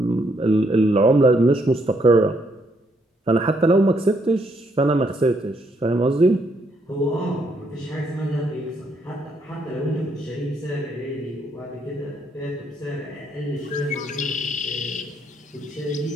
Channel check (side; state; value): both; normal; correlation 0.73